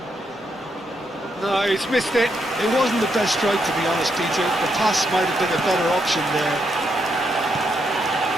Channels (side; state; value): both; normal; correlation 0.79